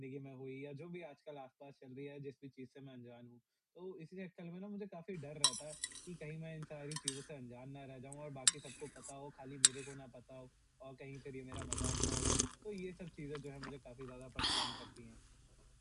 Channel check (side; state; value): both; identical; correlation 1.00